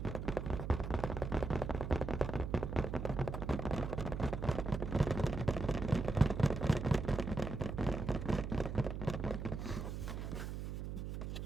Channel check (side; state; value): right; noise; hum, 5 dB below the sound